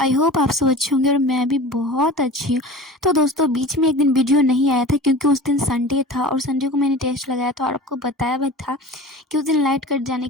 होप आप सब अच्छे होंगे और मैं भी बहुत अच्छी हूँ। तो दोस्तों, बीच में एक दिन वीडियो नहीं आया था क्योंकि उस दिन संडे था और संडे को मैंने टेस्ट लगाया था और आपको बताया भी था कि उस दिन लाइट कट जाने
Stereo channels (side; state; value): both; normal; correlation 0.37